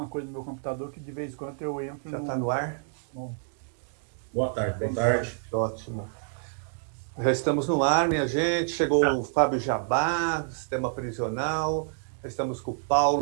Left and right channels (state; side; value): silent; left; digital silence